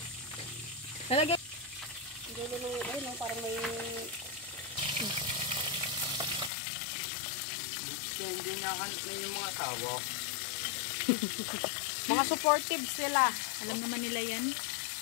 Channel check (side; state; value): right; drops out; at 6.5 s